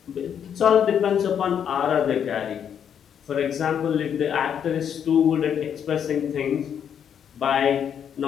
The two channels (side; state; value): right; quieter; 8.5 dB